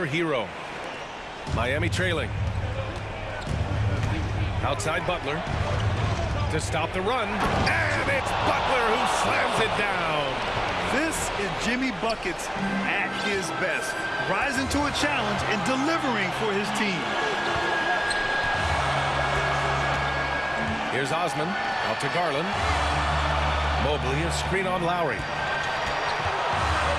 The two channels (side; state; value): both; identical; correlation 1.00